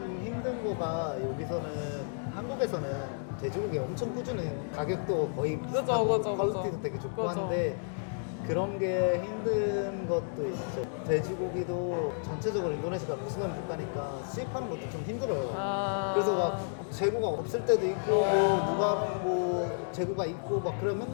힘든 거가 여기서는 한국에서는 돼지고기 엄청 꾸준해. 가격도 거의 비슷하고 그죠. 퀄리티도 되게 좋고 그죠. 한데 그런 게 힘든 것도 있죠. 돼지고기도 전체적으로 인도네시아가 무슬림 국가니까 수입하는 것도 좀 힘들어요. 그래서 막 재고가 없을 때도 있고 뭐 누가는 뭐 재고가 있고 막 그런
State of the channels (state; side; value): silent; right; digital silence